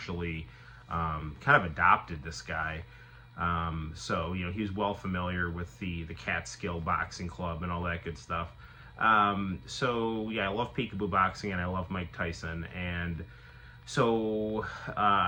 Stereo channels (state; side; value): identical; both; correlation 1.00